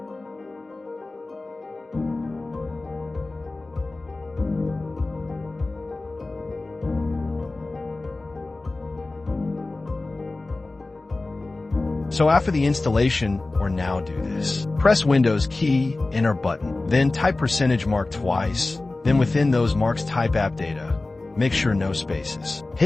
So after the installation, or now do this. Press Windows key, enter button, then type %mark twice, then within those marks type app data. Make sure no spaces.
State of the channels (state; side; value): quieter; right; 3.2 dB